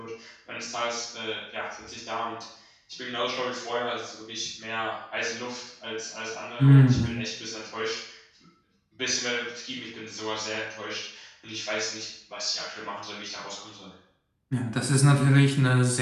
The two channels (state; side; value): identical; both; correlation 1.00